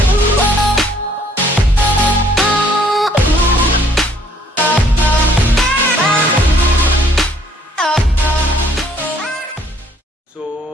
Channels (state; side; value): normal; both; correlation 0.62